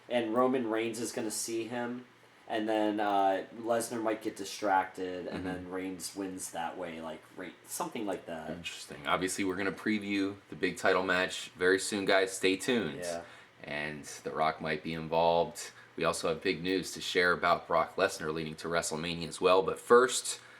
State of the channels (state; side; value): identical; both; correlation 1.00